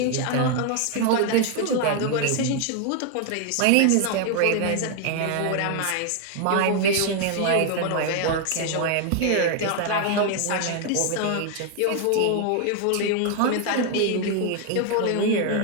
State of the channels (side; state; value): both; different; correlation 0.00